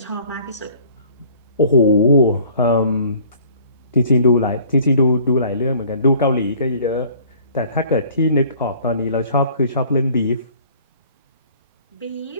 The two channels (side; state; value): both; inverted; correlation -0.53